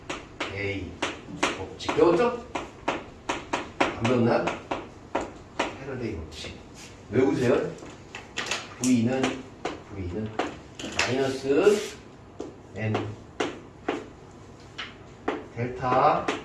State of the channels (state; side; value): identical; both; correlation 1.00